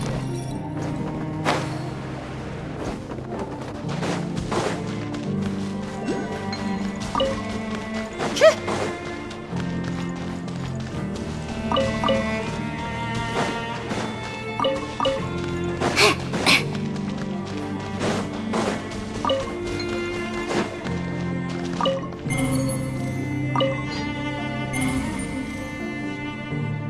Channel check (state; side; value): identical; both; correlation 1.00